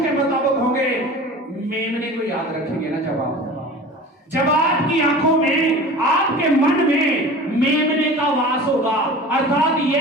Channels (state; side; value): normal; both; correlation 0.38